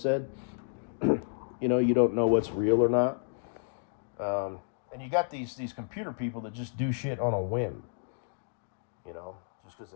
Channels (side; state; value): right; silent; digital silence